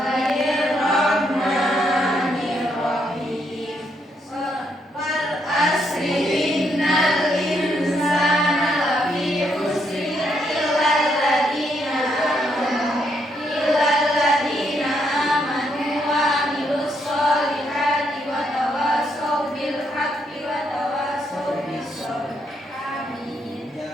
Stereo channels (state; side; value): normal; both; correlation 0.76